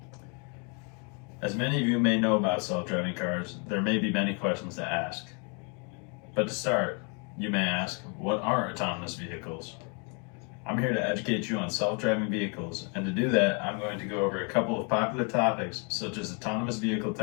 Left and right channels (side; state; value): right; quieter; 36.0 dB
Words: As many of you may know about self-driving cars, there may be many questions to ask. But to start, you may ask, what are autonomous vehicles? I'm here to educate you on self-driving vehicles, and to do that, I'm going to go over a couple of popular topics such as autonomous vehicle